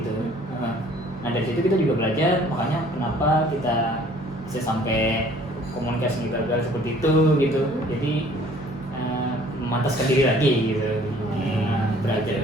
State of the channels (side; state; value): both; normal; correlation 0.55